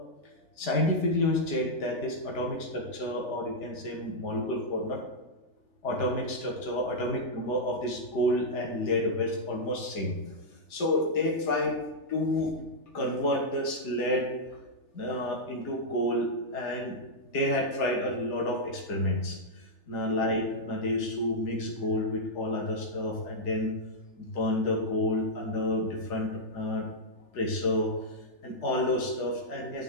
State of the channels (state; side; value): late; right; 3.4 ms